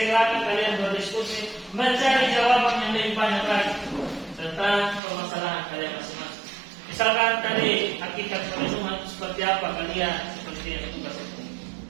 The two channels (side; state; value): left; drops out; at 5.0 s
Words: silakan kalian berdiskusi, mencari jawaban yang lebih banyak lagi tentang permasalahan kalian masing-masing. Misalkan tadi hakikat perlindungan seperti apa kalian seperti yang tugas itu.